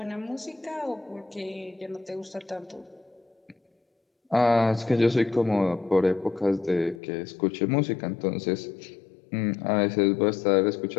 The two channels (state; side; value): drops out; right; at 7.0 s